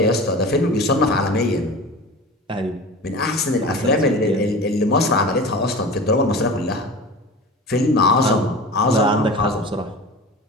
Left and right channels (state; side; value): normal; both; correlation 0.34